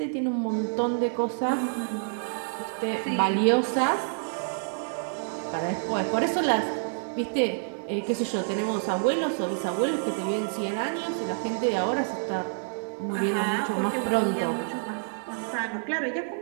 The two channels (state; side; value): silent; left; 59 dB below the other